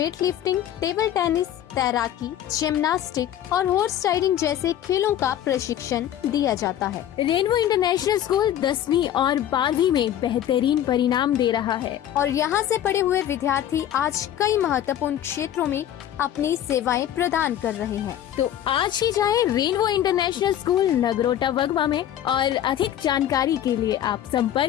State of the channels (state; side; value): quieter; right; 11.2 dB